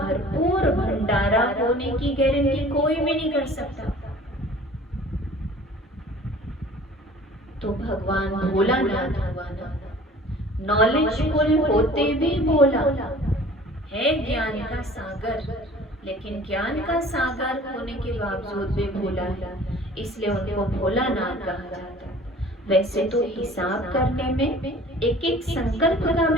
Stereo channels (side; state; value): both; normal; correlation 0.47